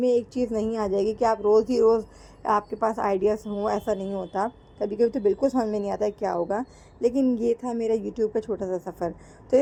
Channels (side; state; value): both; identical; correlation 1.00